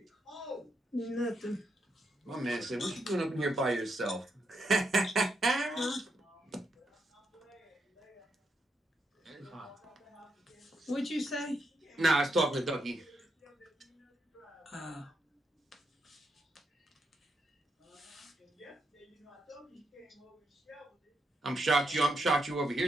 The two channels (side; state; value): both; normal; correlation 0.81